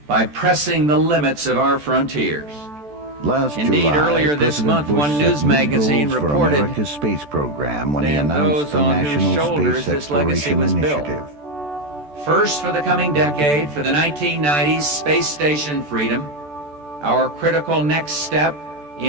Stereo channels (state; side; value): late; left; 14 ms